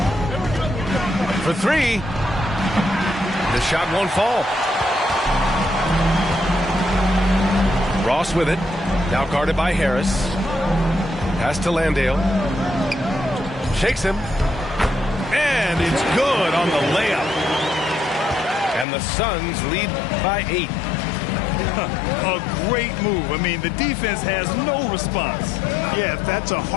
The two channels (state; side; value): drops out; right; at 18.9 s